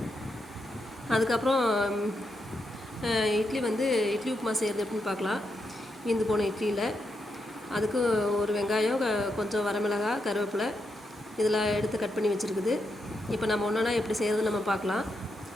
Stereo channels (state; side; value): normal; both; correlation 0.83